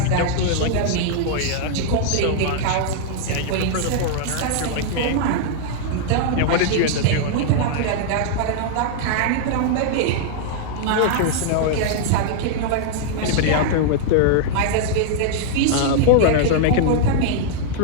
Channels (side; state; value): both; different; correlation -0.01